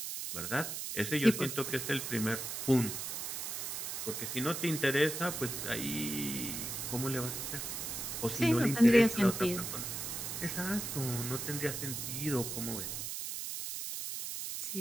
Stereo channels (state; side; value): noise; right; hiss, 4 dB below the sound